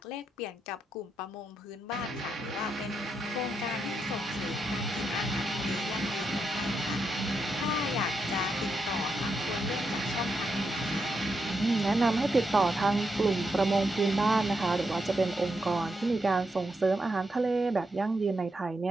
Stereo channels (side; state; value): both; normal; correlation 0.83